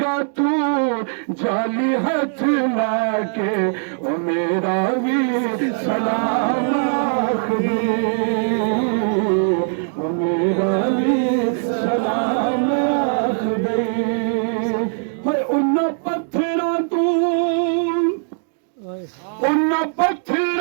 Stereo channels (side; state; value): left; silent; 66 dB below the other